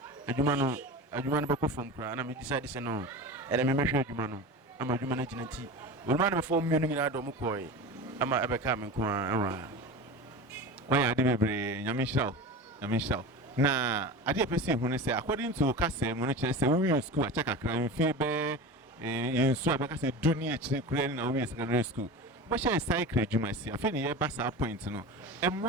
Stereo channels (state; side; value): normal; both; correlation 0.30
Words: adwuma no be ko from kra na me decide say no e de me hwe adwuma no ama adwuma na gina nti we ma na me form me no nyina do mo koi ama abeka me nko a why ade bebre nyame hiraw na ade pese hu ne say according to kase mo no kire say we school a check akra mfi be yensu abeka say dunia kire kure na we secondary school but she cycle adwuma si afi ne ye ba sa point no